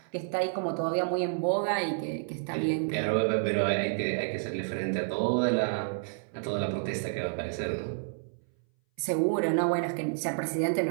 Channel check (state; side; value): silent; left; 58 dB below the other